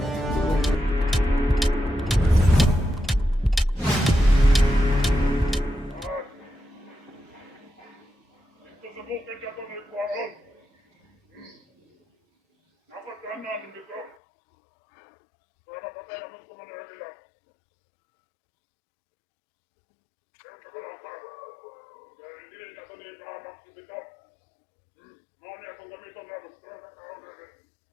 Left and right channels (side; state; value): right; drops out; at 14.2 s